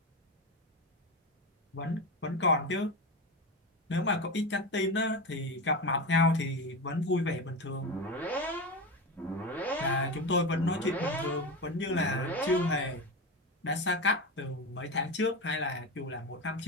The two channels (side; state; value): both; normal; correlation 0.20